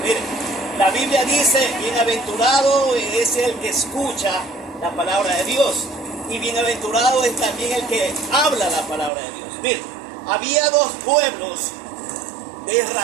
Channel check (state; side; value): drops out; left; at 9.1 s